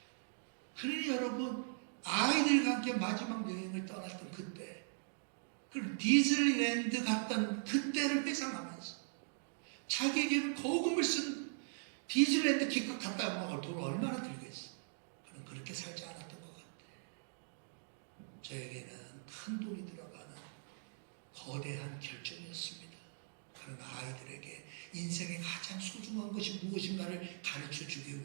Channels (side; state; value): left; silent; digital silence